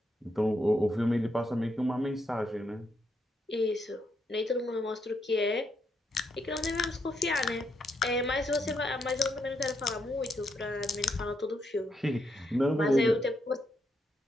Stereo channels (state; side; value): normal; both; correlation 0.78